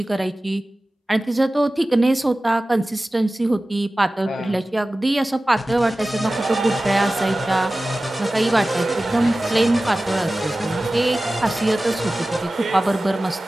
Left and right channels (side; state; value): both; normal; correlation 0.96